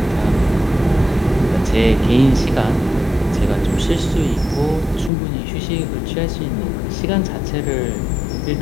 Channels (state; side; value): drops out; right; at 5.1 s